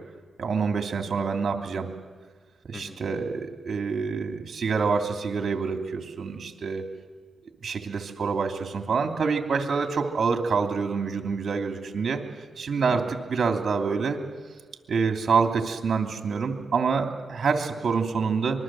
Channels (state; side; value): quieter; left; 4.8 dB